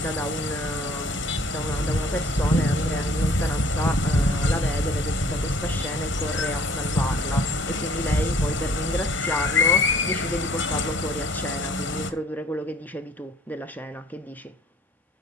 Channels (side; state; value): both; normal; correlation 0.55